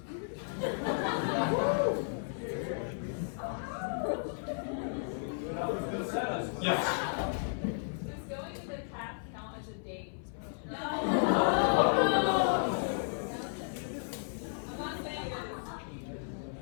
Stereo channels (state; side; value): silent; right; 55 dB below the other